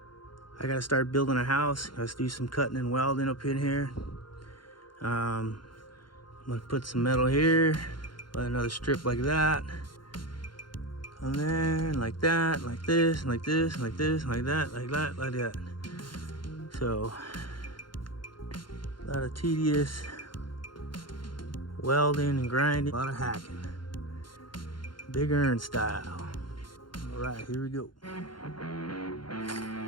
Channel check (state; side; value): late; right; 0.72 ms